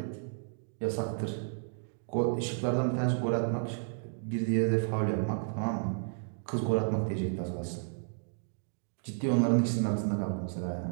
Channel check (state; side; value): silent; left; digital silence